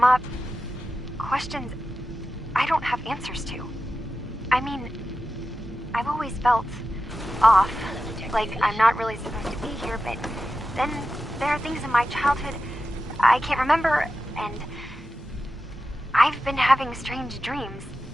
up. Questions I don't have answers to. I mean, I've always felt off, like I'm not really supposed to be here, but then there are things in my childhood I can't remember, and I've been having strange dreams.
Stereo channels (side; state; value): both; normal; correlation 0.93